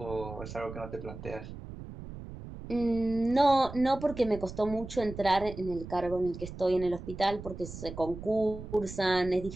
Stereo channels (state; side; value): noise; right; rumble, 11 dB below the sound